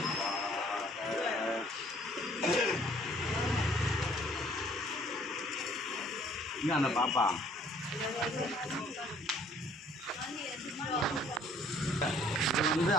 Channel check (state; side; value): normal; both; correlation 0.59